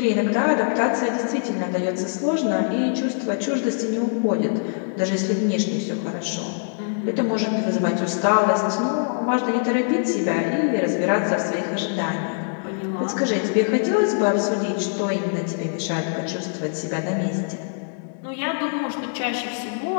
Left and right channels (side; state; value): right; silent; digital silence